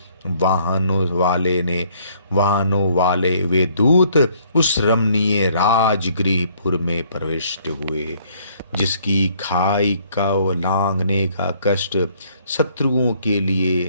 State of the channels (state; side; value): inverted; both; correlation -0.63